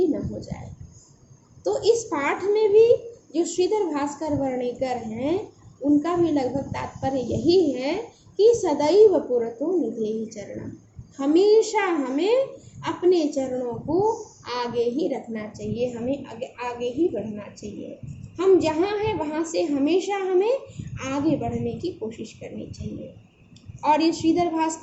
न हो जाए। तो इस पाठ में भी जो श्रीधर भास्कर वर्णेकर हैं, उनका भी लगभग तात्पर्य यही है कि सदैव पुरतो निधेहि चरणम, हमेशा हमें अपने चरणों को आगे ही रखना चाहिए, हमें आगे ही बढ़ना चाहिए। हम जहाँ हैं वहाँ से हमेशा हमें आगे बढ़ने की कोशिश करनी चाहिए। और ये श्रीधर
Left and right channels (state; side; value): identical; both; correlation 1.00